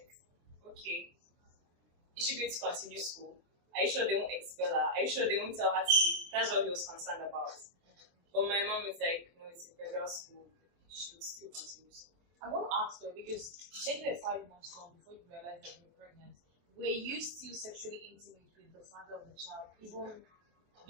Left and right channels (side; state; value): left; late; 24 ms